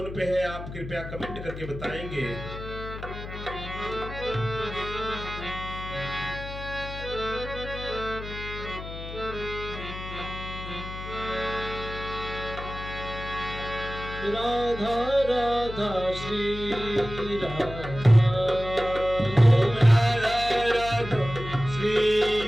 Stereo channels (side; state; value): left; noise; hum, 10 dB below the sound